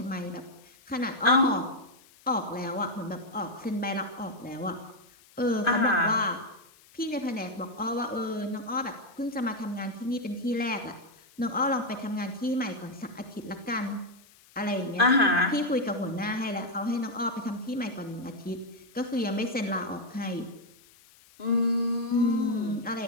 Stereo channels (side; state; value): left; noise; hiss, 27 dB below the sound